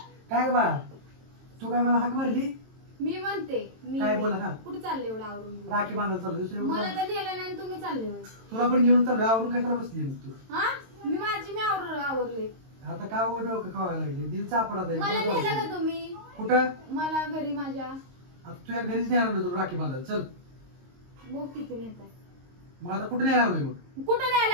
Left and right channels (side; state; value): left; late; 22 ms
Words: काय बा तू काय मला हाक मारली मी म्हणते मी काय बोला का कुठे चालले एवढं आवरून घेऊन? राखी बांधायला चालू दुसरी मला तर नेलं नाही आणि तुम्ही चालले होय. तुला पण घेऊन चालू आवरून कशाला बसली मग तू हा मी आवरले आता का डोकं खावायला लागली दिल चापडा मला नेलं का तुम्ही कुठं मला घरी माझ्या आता तुझ्या घरीच नाही आणलं तुला राखी बांधायला चल बोक किती नेताय मग आता कुठे नाही आणलं मग कुठं नाही